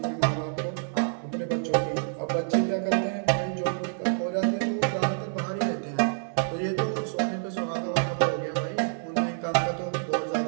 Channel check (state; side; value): silent; left; digital silence